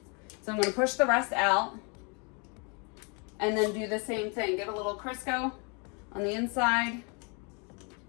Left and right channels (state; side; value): quieter; right; 34.0 dB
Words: So I'm going to push the rest out. And then do the same thing. Get a little Crisco on the inside.